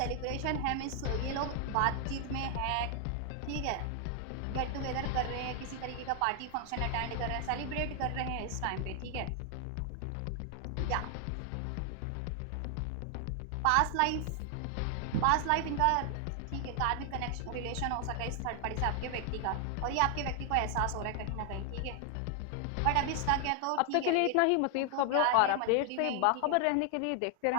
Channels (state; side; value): different; both; correlation 0.00